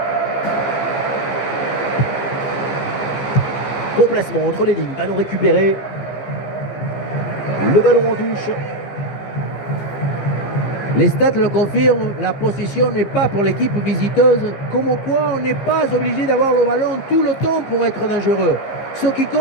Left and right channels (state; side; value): late; right; 15 ms